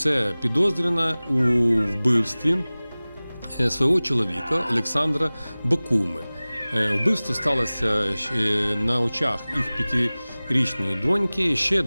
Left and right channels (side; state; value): both; inverted; correlation -0.99